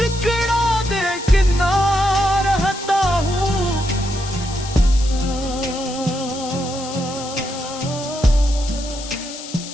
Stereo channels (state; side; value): noise; left; hiss, 12 dB below the sound